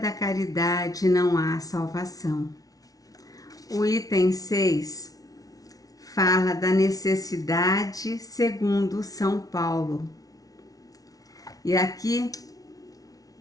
caridade não há salvação. O item 6 fala da necessidade segundo São Paulo. E aqui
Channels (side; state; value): right; late; 0.18 ms